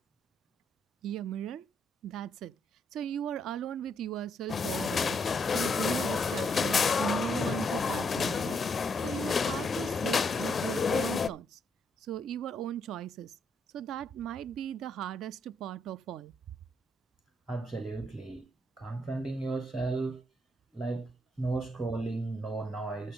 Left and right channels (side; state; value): both; normal; correlation 0.75